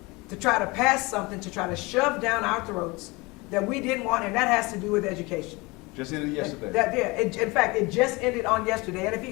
to try to pass something, to try to shove down our throats that we didn't want, and that has to do with education. Just ended yesterday. In fact, it just ended on yesterday, and if he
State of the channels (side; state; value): right; quieter; 24.7 dB